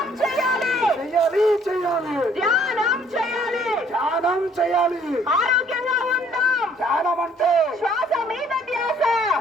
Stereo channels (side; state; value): both; normal; correlation 0.61